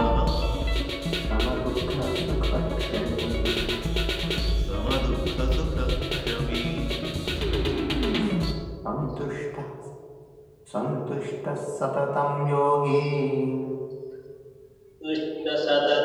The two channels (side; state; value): both; identical; correlation 1.00